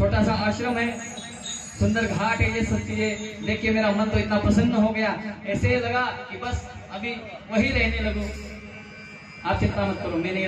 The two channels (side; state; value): both; identical; correlation 1.00